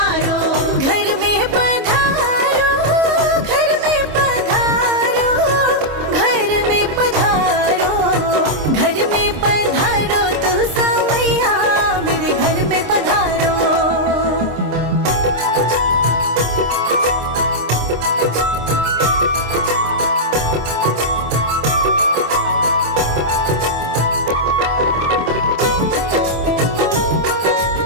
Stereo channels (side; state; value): left; late; 26 ms